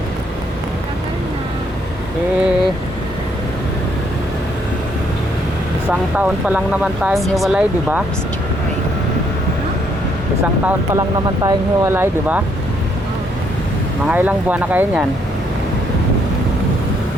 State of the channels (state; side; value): normal; both; correlation 0.71